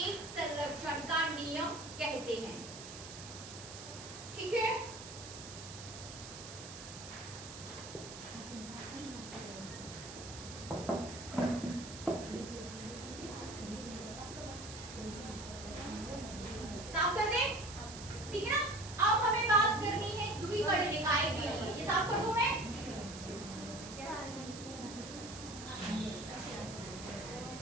संरक्षण का नियम कहते हैं, ठीक है। साफ कर दें, ठीक है ना। अब हमें बात करनी है द्विकर्ण निकाय के लिए, ये साफ कर दूं मैं।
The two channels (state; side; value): noise; right; hiss, 12 dB below the sound